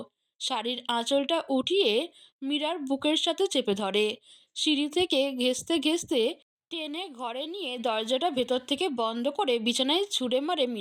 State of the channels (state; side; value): identical; both; correlation 1.00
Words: শাড়ির আঁচলটা উঠিয়ে মীরার বুকের সাথে চেপে ধরে। সিঁড়ি থেকে ঘেঁষতে ঘেঁষতে টেনে ঘরে নিয়ে দরজাটা ভেতর থেকে বন্ধ করে বিছানায় ছুঁড়ে মারে